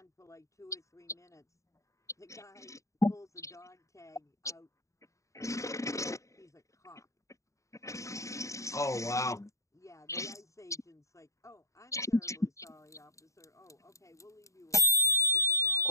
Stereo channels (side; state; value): right; late; 0.15 ms